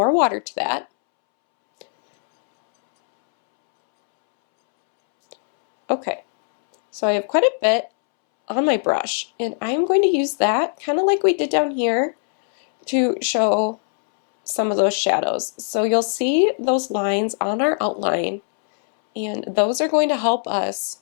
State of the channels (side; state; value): right; silent; 66 dB below the other